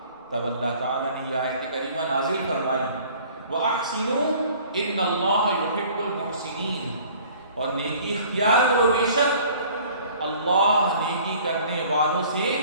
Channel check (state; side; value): inverted; both; correlation -0.51